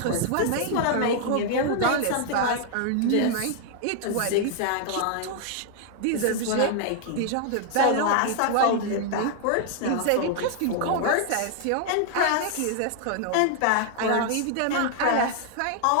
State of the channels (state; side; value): different; both; correlation 0.00